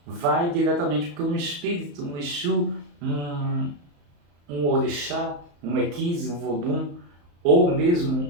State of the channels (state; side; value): late; left; 35 ms